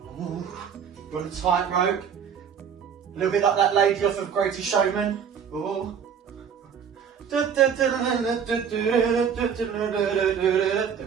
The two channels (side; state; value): left; quieter; 7.4 dB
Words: Ooh, you're on a tightrope, a little bit like that lady off of Greatest Showman. Ooh. Good,